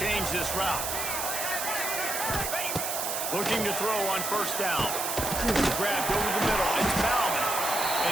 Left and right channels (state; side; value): noise; right; hiss, 2 dB below the sound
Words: this route. Looking to throw on first down. Grabbed over the middle. It's Bauman. And